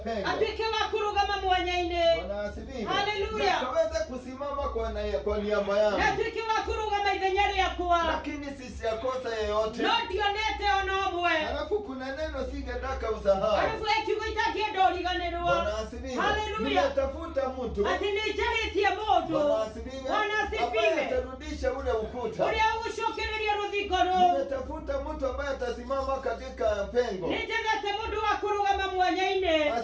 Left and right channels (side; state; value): both; identical; correlation 1.00